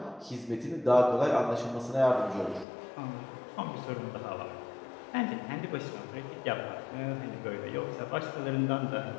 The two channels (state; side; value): drops out; right; at 2.7 s